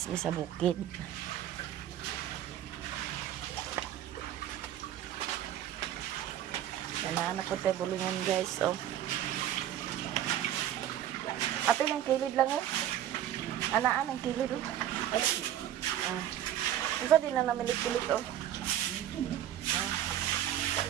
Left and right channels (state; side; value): quieter; left; 11.6 dB